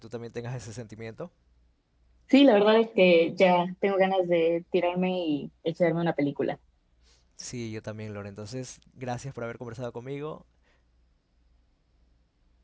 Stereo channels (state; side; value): identical; both; correlation 1.00